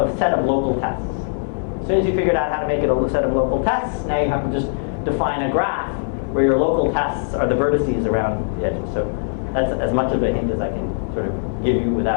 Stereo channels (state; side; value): silent; right; digital silence